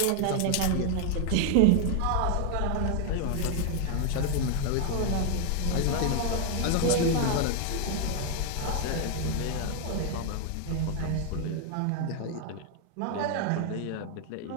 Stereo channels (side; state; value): both; different; correlation 0.00